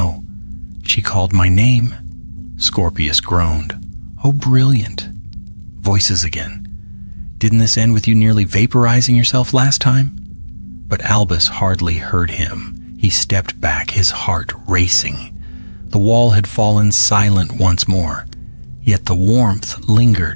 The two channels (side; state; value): both; inverted; correlation -1.00